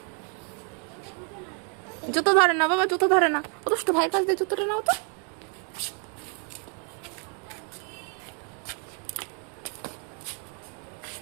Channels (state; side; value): quieter; left; 39.8 dB